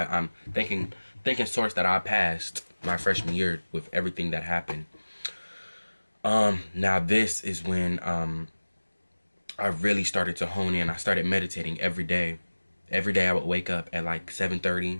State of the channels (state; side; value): inverted; both; correlation -1.00